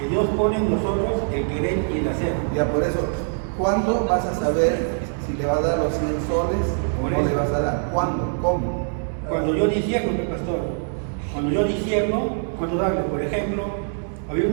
Dios pone en nosotros el querer y el hacer. Ya por eso, ¿cuándo vas a saber si le vas a dar los 100 soles o Por no eso. le vas a dar? ¿Cuándo? ¿Cómo? Cuando yo discierno, pastor, cuando yo discierno, cuando darle, por ejemplo, había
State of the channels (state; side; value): silent; left; 63 dB below the other